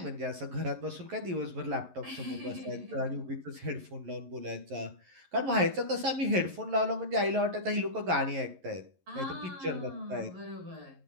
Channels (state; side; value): late; left; 11 ms